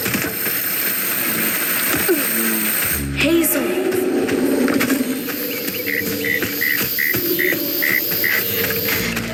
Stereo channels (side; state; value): both; identical; correlation 1.00